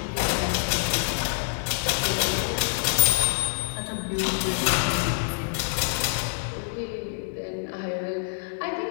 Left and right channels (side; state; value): right; silent; digital silence